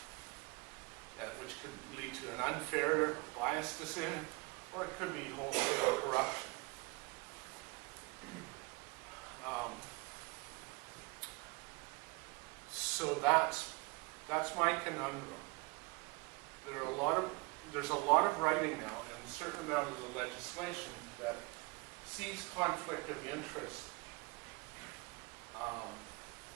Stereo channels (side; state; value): left; quieter; 27.0 dB